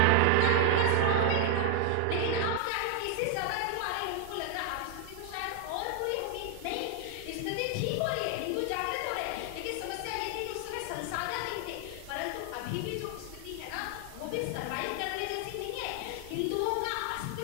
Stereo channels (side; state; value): both; different; correlation 0.00